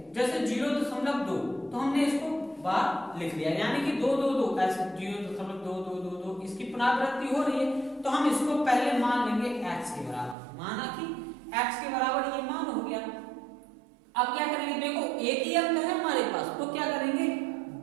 जैसे 0.2, तो हमने इसको बार लिख दिया, यानी कि 2 ऐसे 0.2222, इसकी पुनरावृत्ति हो रही है, तो हम इसको पहले मान लेंगे x के बराबर। माना कि x के बराबर ये मान हो गया। अब क्या करेंगे? देखो एक ही अंक है हमारे पास, तो क्या करेंगे?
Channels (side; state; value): left; drops out; at 10.4 s